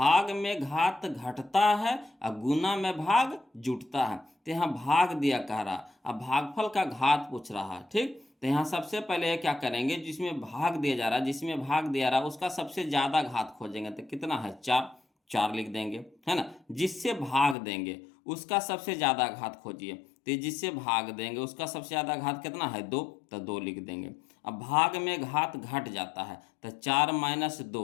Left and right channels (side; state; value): right; drops out; at 17.6 s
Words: में घात घटता है और गुना में भाग जुटता है, तो यहाँ भाग दिया कह रहा, अब भागफल का घात पूछ रहा है, ठीक, तो यहाँ सबसे पहले क्या करेंगे, जिसमें भाग दिया जा रहा है, जिसमें भाग दिया रहा है उसका सबसे ज़्यादा घात खोजेंगे, तो कितना है 4, 4 लिख देंगे है ना, जिससे भाग देंगे उसका सबसे ज़्यादा घात खोजिए, तो जिससे भाग देंगे उसका सबसे ज़्यादा घात कितना है 2, तो 2 लिख देंगे। अब भाग में घात घट जाता है तो 4 माइनस